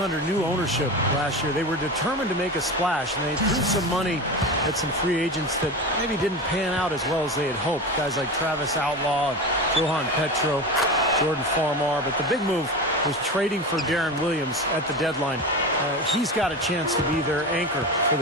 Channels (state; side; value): normal; both; correlation 0.25